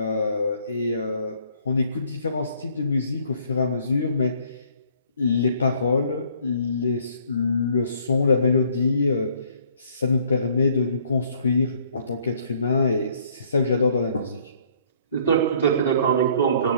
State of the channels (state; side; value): inverted; both; correlation -0.61